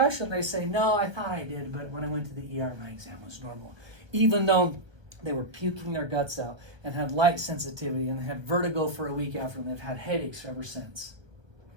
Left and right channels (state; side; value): late; left; 1.2 ms